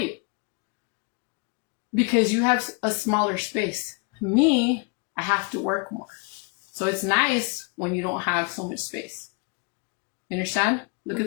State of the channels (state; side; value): quieter; right; 34.3 dB